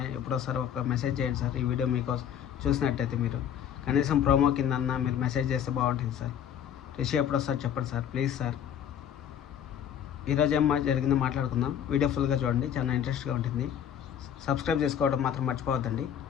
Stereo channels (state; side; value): quieter; right; 9.2 dB